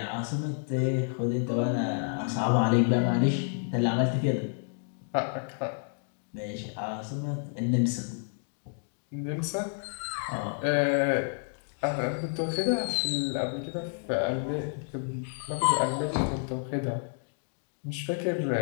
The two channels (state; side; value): silent; right; digital silence